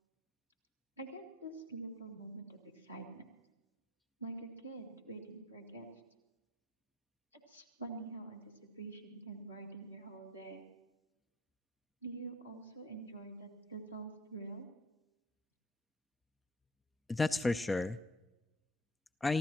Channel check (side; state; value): both; normal; correlation 0.60